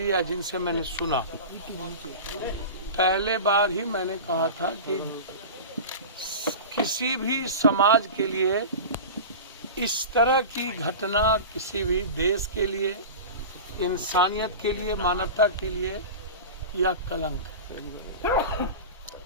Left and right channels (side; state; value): both; inverted; correlation -0.30